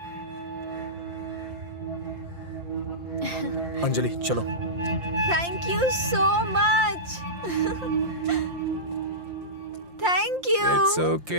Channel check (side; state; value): left; late; 5.7 ms